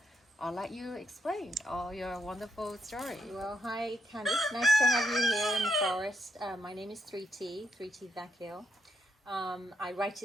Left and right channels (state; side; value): normal; both; correlation 0.78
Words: I'll let you explain all your wonderful story. Well, hi Candice, nice to have you here in the forest. My name is 3T Vakil. I write